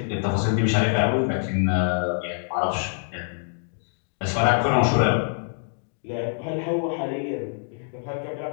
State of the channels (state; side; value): silent; right; digital silence